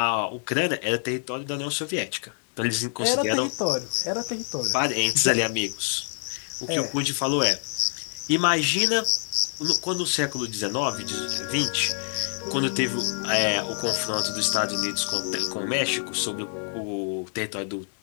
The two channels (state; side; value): silent; right; digital silence